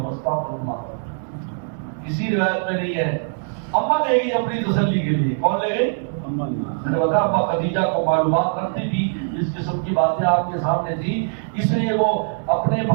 استغفر اللہ، کسی روایت میں نہیں ہے۔ اما لے گئی اپنی تسلی کے لیے، کون لے گئی؟ اما لے گئی۔ میں نے بتایا اما خدیجہ کو معلومات رکھتی تھی، اس قسم کی باتیں آپ کے سامنے تھی، اس لیے وہ اپنے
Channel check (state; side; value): silent; left; digital silence